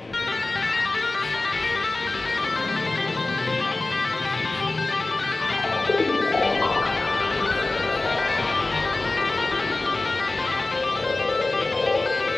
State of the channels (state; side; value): quieter; right; 3.1 dB